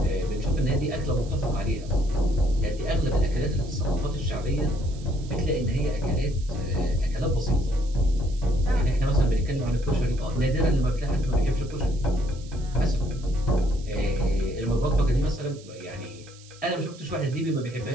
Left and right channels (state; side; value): noise; right; hiss, 22 dB below the sound